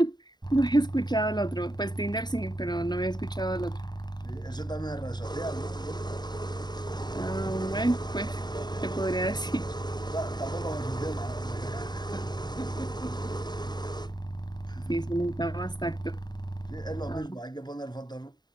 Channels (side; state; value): right; late; 0.20 ms